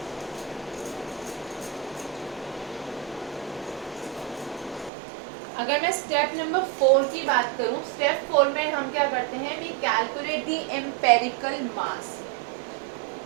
अगर मैं स्टेप नंबर 4 की बात करूं, स्टेप 4 में हम क्या करते हैं, we calculate the empirical mass.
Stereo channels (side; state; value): left; drops out; at 4.9 s